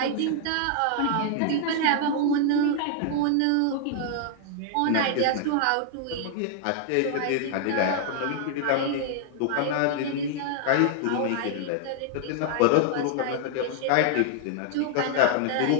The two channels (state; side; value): different; both; correlation 0.00